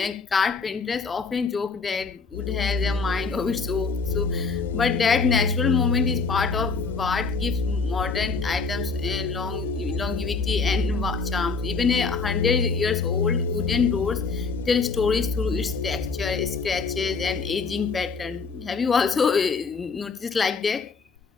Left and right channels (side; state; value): right; quieter; 4.6 dB